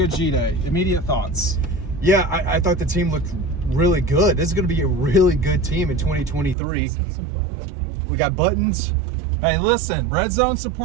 G-Day. Immediate thoughts. Yeah, I thought the team looked really good. This is going to be a really good team in 2023. We got buttons. Hey, listen, Red Zone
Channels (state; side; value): drops out; left; at 6.6 s